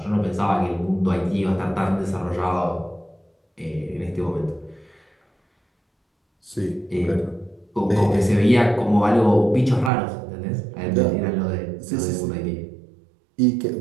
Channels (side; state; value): left; drops out; at 9.9 s